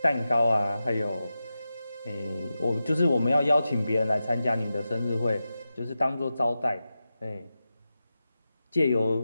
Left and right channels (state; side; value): inverted; both; correlation -0.92